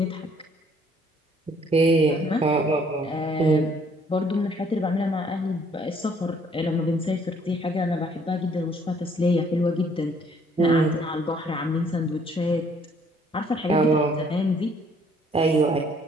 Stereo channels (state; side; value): normal; both; correlation 0.62